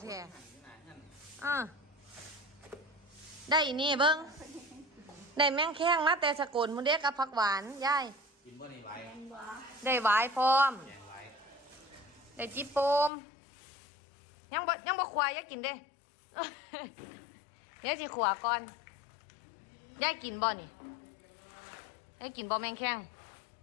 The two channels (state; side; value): drops out; right; at 13.1 s